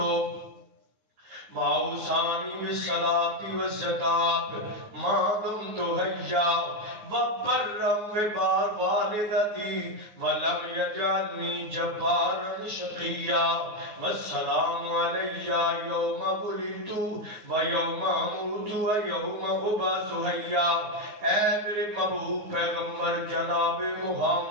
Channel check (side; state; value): left; late; 9.5 ms